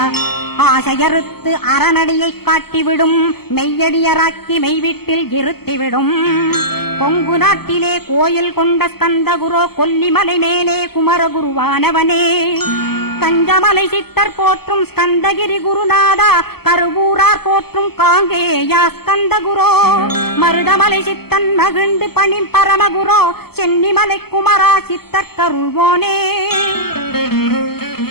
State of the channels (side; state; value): right; late; 0.96 ms